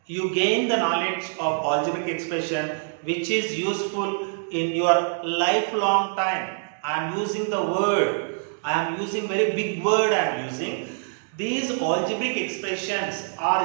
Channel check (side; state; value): left; silent; 62 dB below the other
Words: You gain the knowledge of algebraic expression which is useful in your lifelong time. I am using the word, I am using very big word I am using. These algebraic expressions are